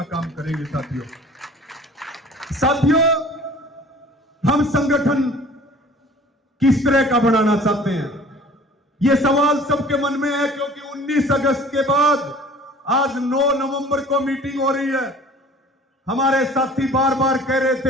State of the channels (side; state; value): both; normal; correlation 0.47